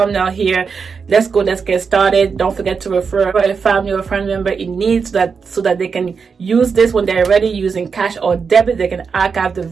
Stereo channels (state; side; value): quieter; left; 5.6 dB